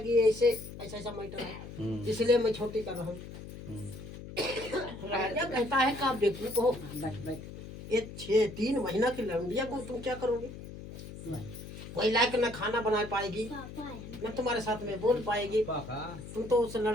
ऐसे ऐसा ऐसा मैटर है, इसलिए मैं छोटी कर रहा हूँ। राजा कहता है कि आप बेवकूफ हो, ये 3 महीना की लड़किया को तुम क्या करोगे? कोई लायक न खाना बना पाएगी, न तुम्हारे साथ में बोल पाएगी, तुम तो उस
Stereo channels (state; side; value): noise; left; hum, 12 dB below the sound